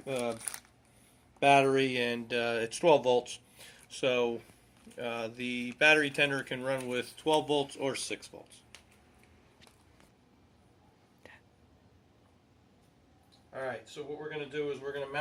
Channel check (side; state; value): both; identical; correlation 1.00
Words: battery, and it's 12 volts. So the battery tender can run with 12 volts or 6 volts. Alright, so what we're going to do is we're going to